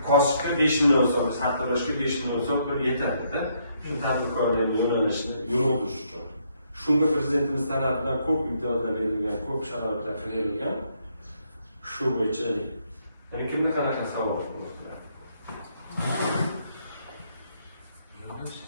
kosibga 5 million so'm, sartaroshga 5 million so'm pul yetadi-da. Shu tadbirkorlikning yo'nalishini yurg'izish uchun. Shunga prezidentimiz tarafidan ko'p imtiyozlar berilgan, ko'p sharoitlar berilgan. Shu bo'yicha yana kimga qanaqa savol bor?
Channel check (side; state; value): both; inverted; correlation -0.72